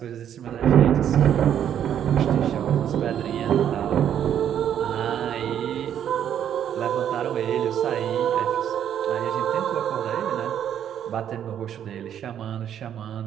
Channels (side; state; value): left; quieter; 9.7 dB